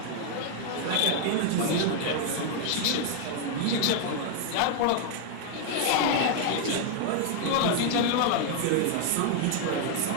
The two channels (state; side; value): different; both; correlation 0.00